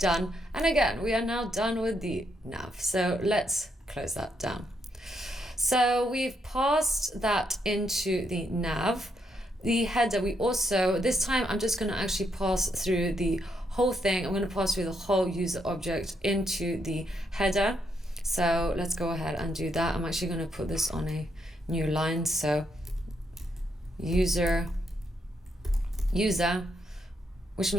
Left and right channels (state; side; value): normal; both; correlation 0.78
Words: And again, we are now done with the nav. So let's close that down. So we've passed that into the nav. The header, we also, this time I'm just going to actually pass through the whole thing. I'm going to pass through the whole user object into the header. So let's go ahead and do that. I'm actually going to put this on a new line. So user, which